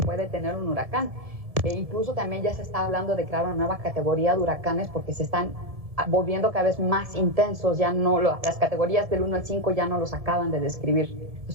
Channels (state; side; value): late; left; 1.7 ms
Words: puede tener un huracán. Incluso también ya se está hablando de crear una nueva categoría de huracanes porque se están volviendo cada vez más intensos, ya no las categorías del 1 al 5 ya no los acaban de describir.